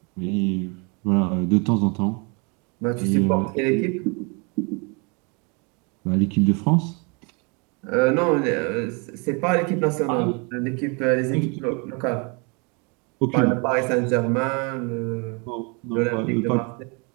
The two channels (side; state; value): left; quieter; 32.6 dB